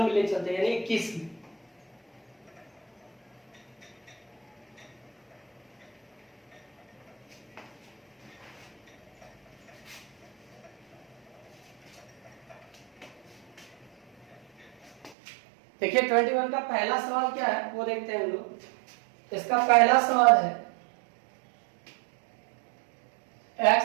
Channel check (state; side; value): drops out; left; at 15.2 s